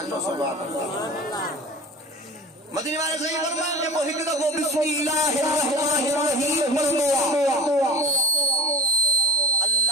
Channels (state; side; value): normal; both; correlation 0.34